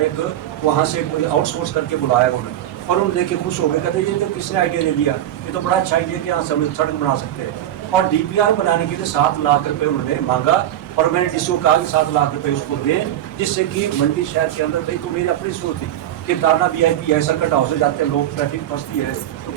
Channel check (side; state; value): left; quieter; 12.2 dB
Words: एक वहाँ से कोई आउटसोर्स करके बुलाया उन्होंने, और उन्हें देख के खुश हो गए, कहते ये तो किसने आइडिया दे दिया, ये तो बड़ा अच्छा आइडिया कि यहाँ सड़क बना सकते हैं। और DPR बनाने के लिए 7 लाख रुपये उन्होंने मांगा, और मैंने DCO को कहा कि 7 लाख रुपये उसको दें, जिससे कि मंडी शहर के अंदर, भाई तो मेरी अपनी सोच थी कि टारना VIP है, सर्किट हाउस से जाते हैं लोग, ट्रैफिक फंसती है, तो